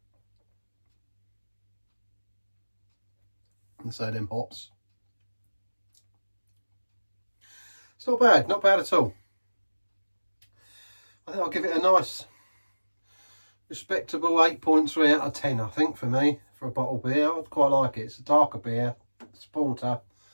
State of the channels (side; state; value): both; inverted; correlation -1.00